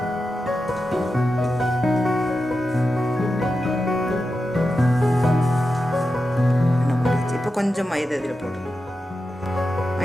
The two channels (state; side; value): normal; both; correlation 0.90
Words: கொஞ்சம் மைதா இதில் போட்டுக்கணும்.